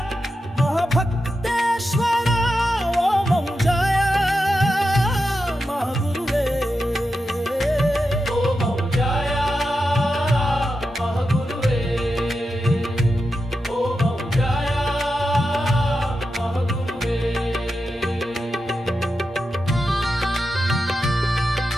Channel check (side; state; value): both; normal; correlation 0.89